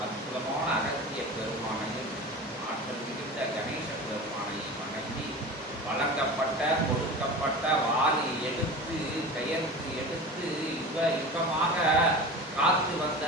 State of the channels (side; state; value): both; normal; correlation 0.33